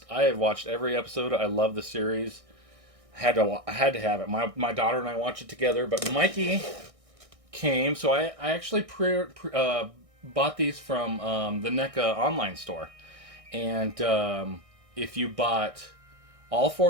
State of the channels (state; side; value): late; left; 1.6 ms